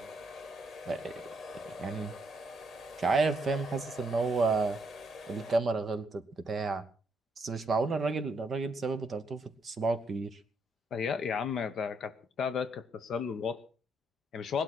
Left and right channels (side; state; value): both; normal; correlation 0.74